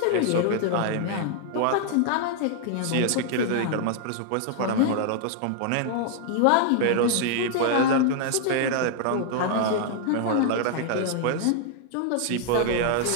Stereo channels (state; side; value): different; both; correlation 0.00